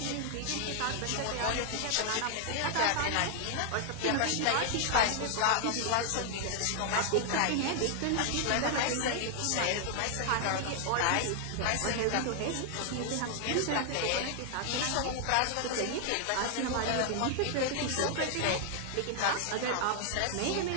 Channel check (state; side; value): different; both; correlation 0.00